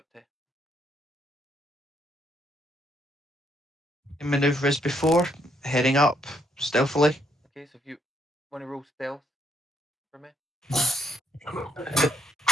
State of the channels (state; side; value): normal; both; correlation 0.73